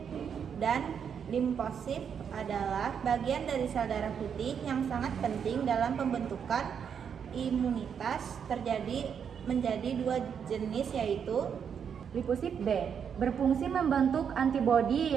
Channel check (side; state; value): left; quieter; 7.4 dB